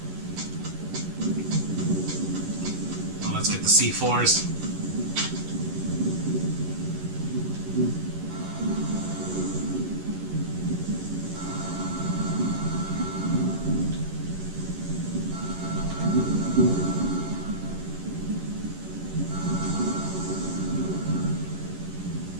Well, let's get the C4s.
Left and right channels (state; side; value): late; left; 11 ms